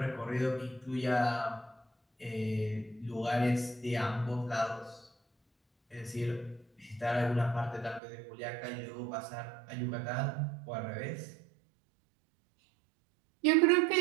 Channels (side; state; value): left; drops out; at 8.0 s